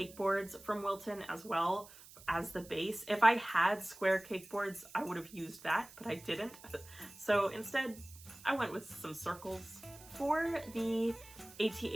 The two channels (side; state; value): right; noise; hiss, 19 dB below the sound